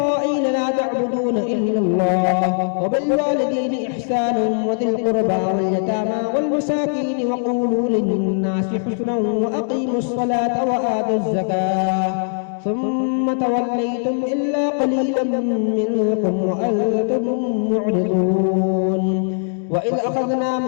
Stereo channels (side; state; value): right; silent; digital silence